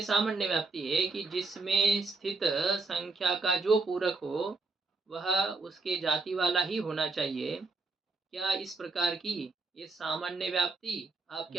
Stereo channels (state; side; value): quieter; left; 3.6 dB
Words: सामान्य व्याप्ति है कि जिसमें स्थित संख्या का जो पूरक हो वह उसके जाति वाला ही होना चाहिए। क्या इस प्रकार की ये सामान्य व्याप्ति आपके